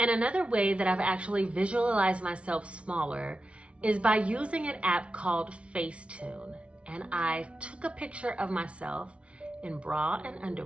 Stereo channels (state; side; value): late; left; 0.060 ms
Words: another way that I've actually visualized myself smaller is by using an app called Facetune. And I took a picture of myself in bra and